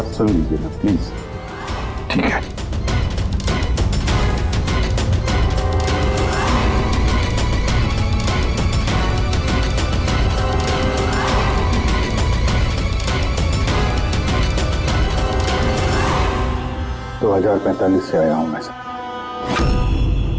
सुन लीजिए ना प्लीज। ठीक है। तो 2045 से आया हूं मैं सर।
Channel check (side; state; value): both; identical; correlation 1.00